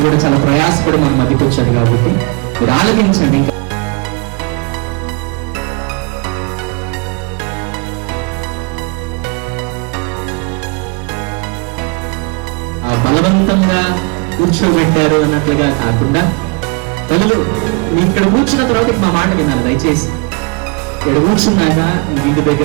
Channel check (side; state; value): left; quieter; 31.1 dB